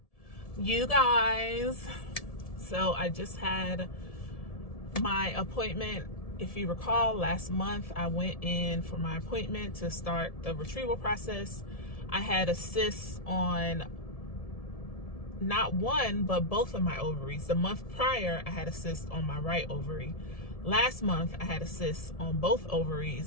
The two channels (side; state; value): right; late; 1.7 ms